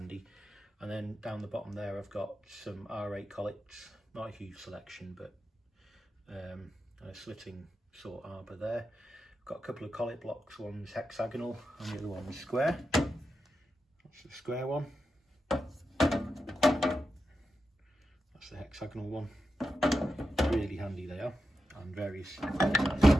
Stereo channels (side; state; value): both; normal; correlation 0.89